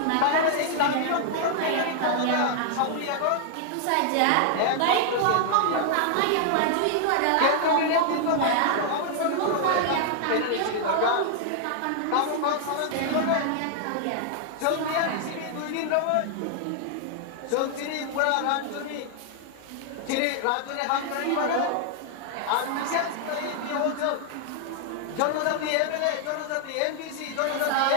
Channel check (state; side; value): different; both; correlation 0.00